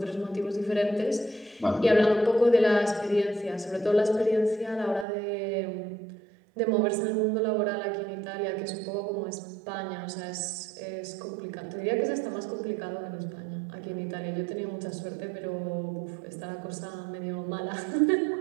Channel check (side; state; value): left; drops out; at 5.1 s